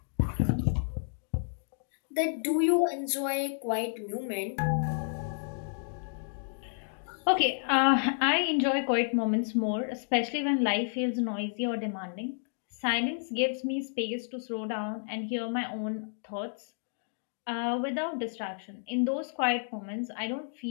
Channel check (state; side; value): silent; right; digital silence